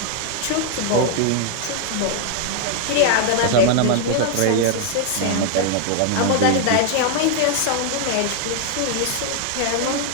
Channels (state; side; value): different; both; correlation 0.00